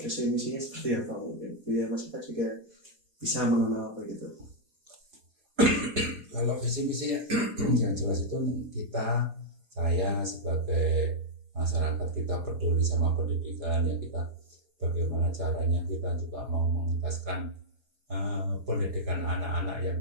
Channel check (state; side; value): late; left; 4.5 ms